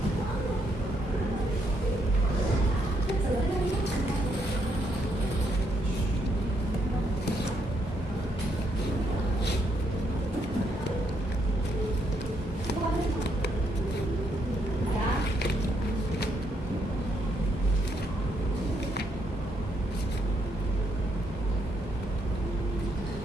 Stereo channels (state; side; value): normal; both; correlation 0.75